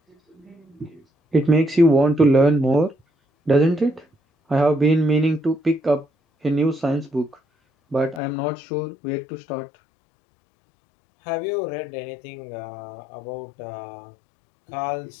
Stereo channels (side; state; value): right; drops out; at 8.2 s